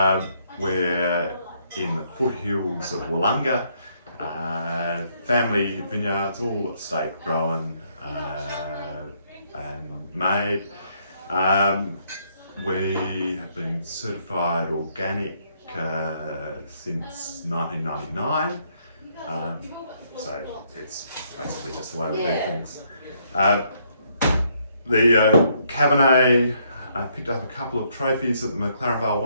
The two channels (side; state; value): both; inverted; correlation -0.71